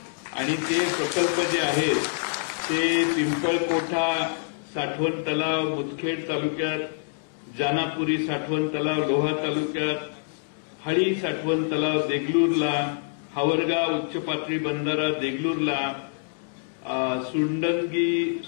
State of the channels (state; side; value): silent; right; digital silence